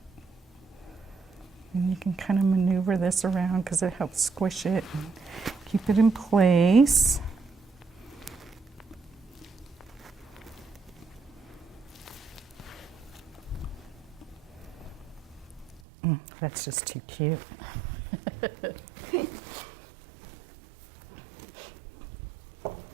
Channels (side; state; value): left; drops out; at 15.8 s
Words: And you can kind of maneuver this around because it helps squish it and keep it in place. That's just too cute.